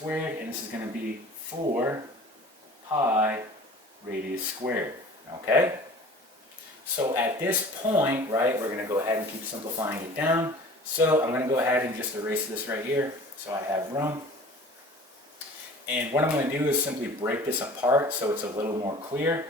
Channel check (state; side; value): normal; both; correlation 0.44